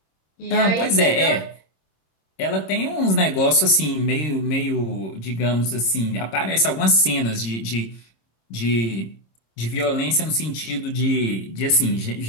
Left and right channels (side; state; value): right; late; 26 ms